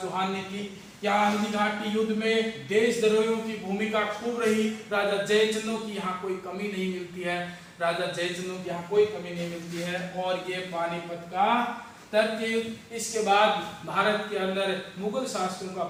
चौहान ने की। यहाँ हल्दी घाटी युद्ध में देशद्रोहियों की भूमिका खूब रही। राजा जयचंदों की यहाँ कोई कमी नहीं मिलती है, राजा जयचंदों की यहाँ कोई कमी नहीं मिलती है। और ये पानीपत का तृतीय युद्ध। इसके बाद भारत के अंदर मुगल शासकों का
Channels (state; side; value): identical; both; correlation 1.00